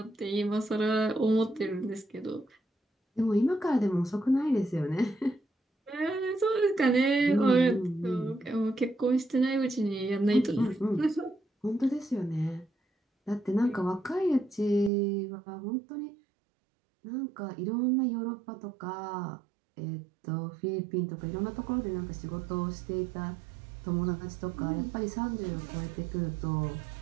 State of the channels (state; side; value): drops out; left; at 14.9 s